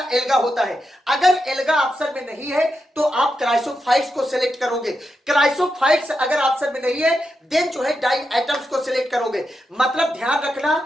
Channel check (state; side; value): normal; both; correlation 0.86